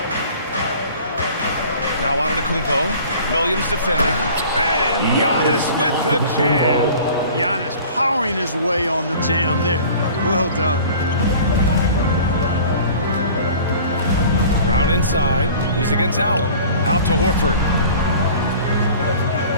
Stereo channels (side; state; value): both; inverted; correlation -0.44